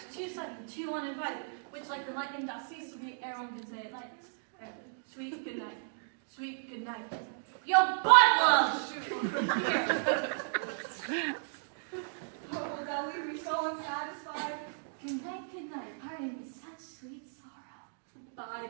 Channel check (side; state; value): left; silent; digital silence